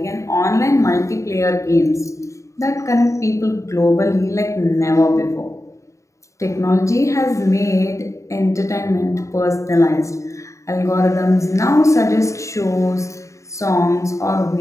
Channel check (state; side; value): late; right; 0.15 ms